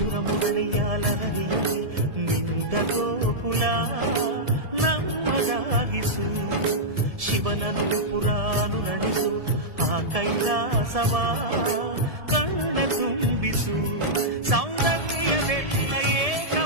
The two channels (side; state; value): left; late; 1.7 ms